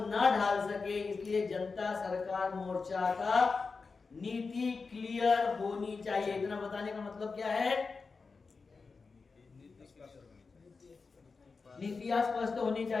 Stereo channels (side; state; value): right; quieter; 4.5 dB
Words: ढाल सके, इसलिए जनता सरकार मोर्चा का नीति क्लियर होनी चाहिए। इतना बताने का मतलब क्या है? नीतियां स्पष्ट होनी